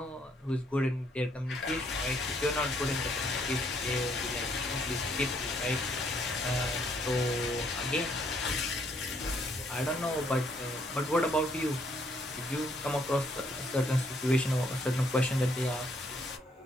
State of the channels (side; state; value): both; normal; correlation 0.69